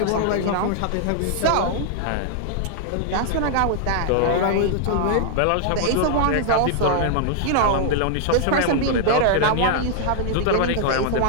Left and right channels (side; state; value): both; different; correlation 0.00